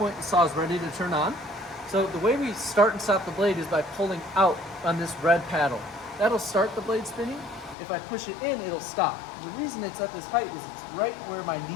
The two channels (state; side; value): drops out; right; at 7.8 s